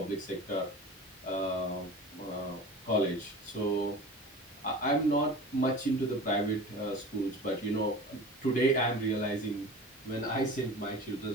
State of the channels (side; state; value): both; normal; correlation 0.36